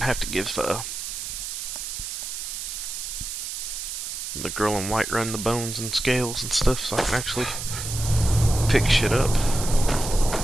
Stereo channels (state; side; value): noise; right; hiss, 6 dB below the sound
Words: have to give the girl in white run the bones and scales and stuff so I can actually pick shit up.